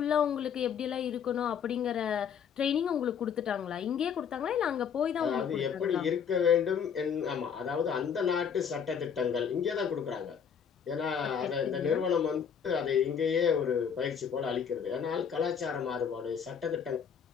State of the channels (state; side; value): quieter; right; 7.4 dB